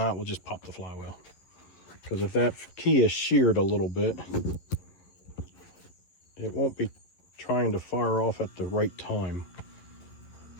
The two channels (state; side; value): late; right; 11 ms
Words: we'll just pop the flywheel. Because if that key is sheared a little bit, it won't be trying to fire off at the right time.